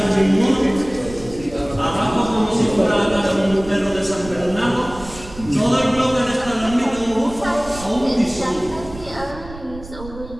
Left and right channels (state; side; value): noise; right; rumble, 15 dB below the sound